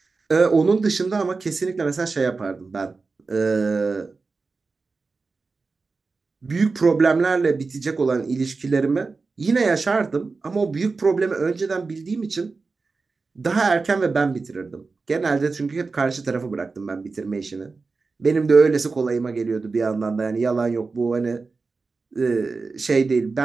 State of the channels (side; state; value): left; quieter; 4.2 dB